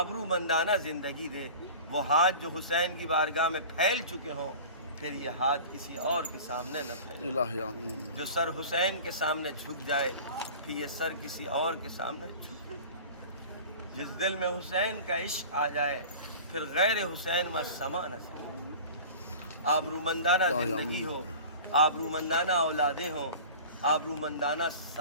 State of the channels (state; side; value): inverted; both; correlation -0.38